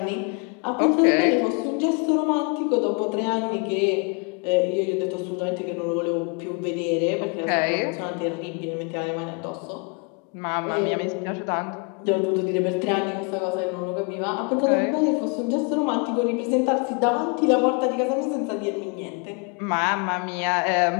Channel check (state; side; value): quieter; right; 34.8 dB